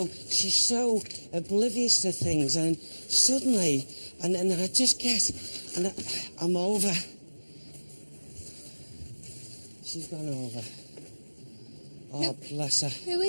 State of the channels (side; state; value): both; inverted; correlation -1.00